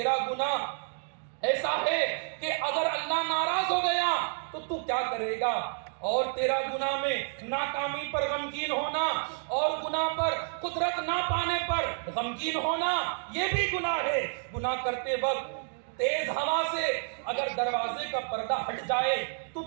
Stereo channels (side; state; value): left; silent; digital silence